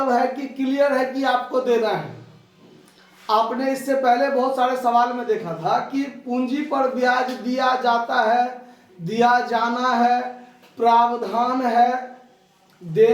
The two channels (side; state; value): both; identical; correlation 1.00